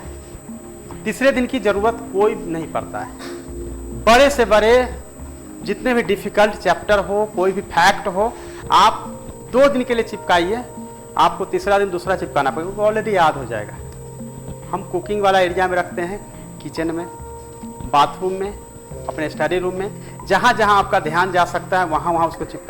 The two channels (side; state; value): both; identical; correlation 1.00